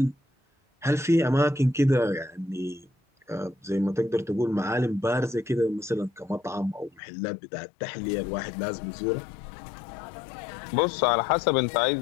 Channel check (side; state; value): right; drops out; at 7.0 s